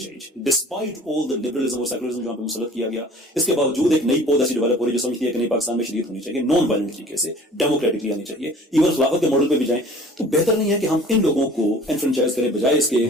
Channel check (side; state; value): both; normal; correlation 0.48